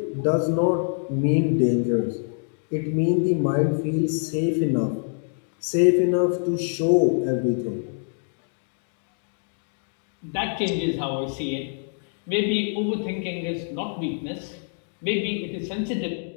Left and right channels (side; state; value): right; silent; digital silence